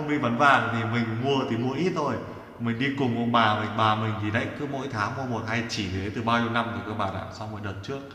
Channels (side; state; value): both; identical; correlation 1.00